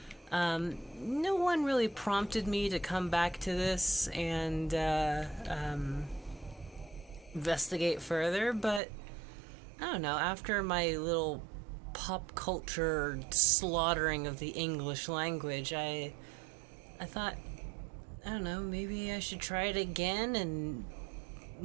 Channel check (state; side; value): drops out; left; at 8.8 s